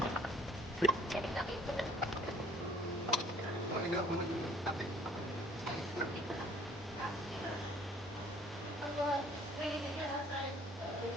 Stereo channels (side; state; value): both; normal; correlation 0.57